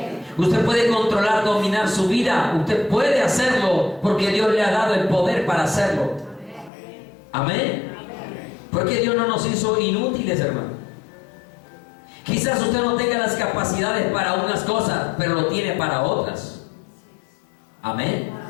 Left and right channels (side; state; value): right; drops out; at 6.7 s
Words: Usted puede controlar, dominar su vida. Usted puede hacerlo porque Dios le ha dado el poder para hacerlo. Amén. Porque Dios no nos hizo inútiles, hermano. Quizás usted no tenga las capacidades para unas cosas, pero lo tiene para otras. Amén.